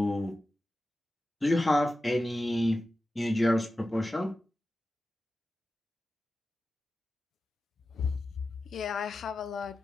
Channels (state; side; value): normal; both; correlation 0.93